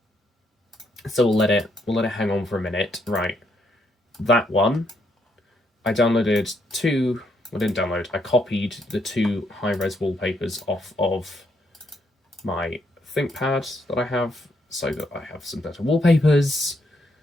So we'll let it hang on for a minute. Right, that one. I downloaded two. I didn't download. I copied the two high-res wallpapers off of my ThinkPad that I have, so that I have some better wallpapers.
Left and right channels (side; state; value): both; normal; correlation 0.75